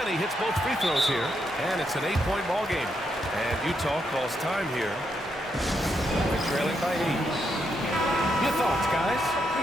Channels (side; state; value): both; normal; correlation 0.80